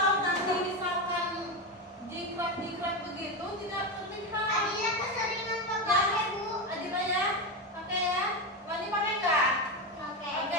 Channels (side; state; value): both; normal; correlation 0.15